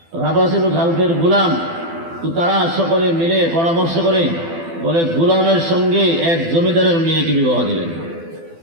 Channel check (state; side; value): late; left; 12 ms